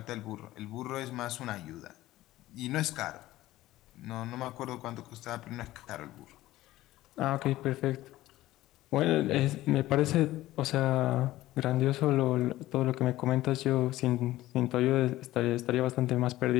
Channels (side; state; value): right; quieter; 16.0 dB